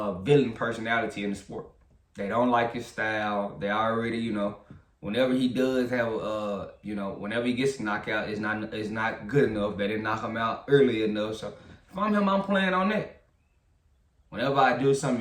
villain personality in the sport. They don't like his style. They already, you know, whenever he does have you know, whenever he gets knocked out, it's not good enough. They didn't knock him out early enough. So if I'm him, I'm playing on that. Whenever I do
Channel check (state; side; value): identical; both; correlation 1.00